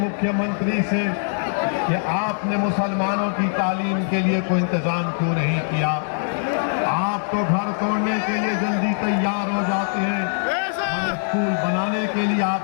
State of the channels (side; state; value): right; silent; digital silence